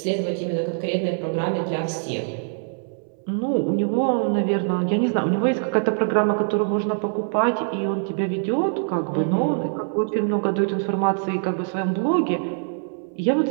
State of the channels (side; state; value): left; silent; 63 dB below the other